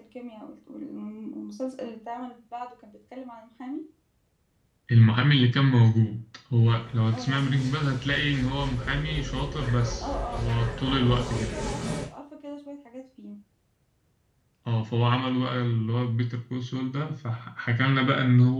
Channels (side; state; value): both; identical; correlation 1.00